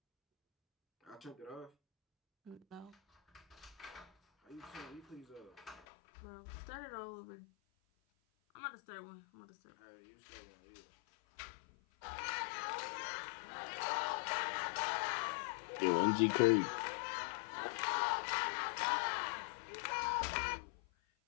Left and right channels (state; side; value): drops out; right; at 5.9 s